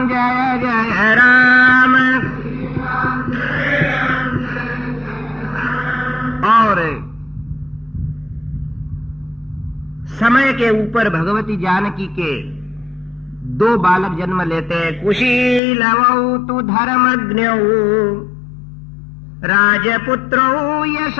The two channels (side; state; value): right; drops out; at 15.6 s